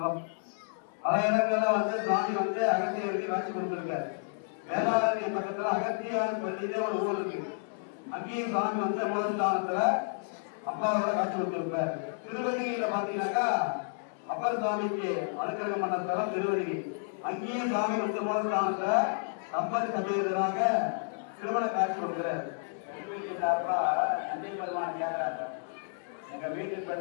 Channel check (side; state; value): right; silent; 57 dB below the other